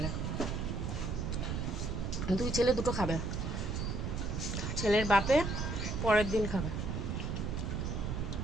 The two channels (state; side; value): noise; right; rumble, 2 dB below the sound